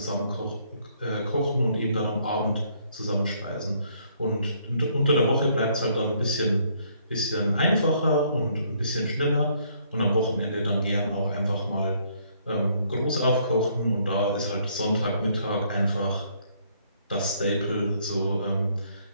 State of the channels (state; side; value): inverted; both; correlation -0.67